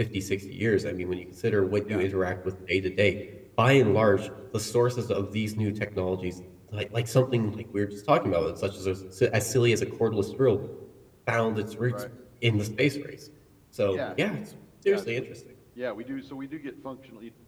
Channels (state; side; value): identical; both; correlation 1.00